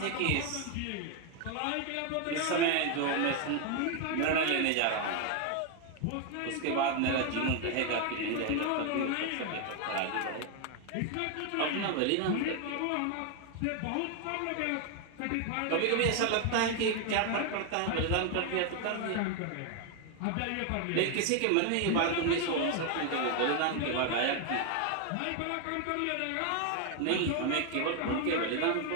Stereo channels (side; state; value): both; different; correlation 0.01